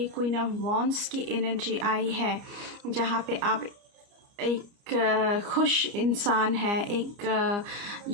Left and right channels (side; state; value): left; late; 29 ms